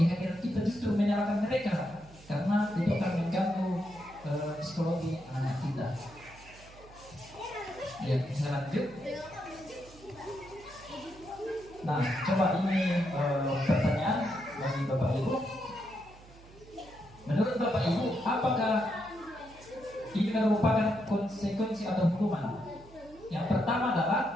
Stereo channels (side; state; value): right; noise; hum, 22 dB below the sound